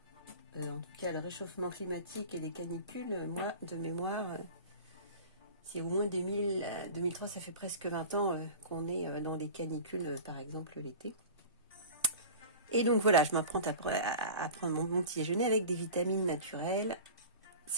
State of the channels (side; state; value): both; inverted; correlation -0.36